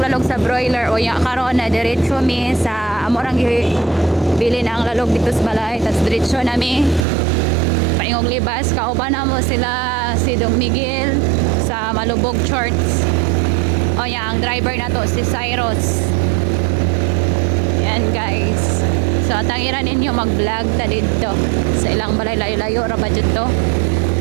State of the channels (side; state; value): left; drops out; at 7.1 s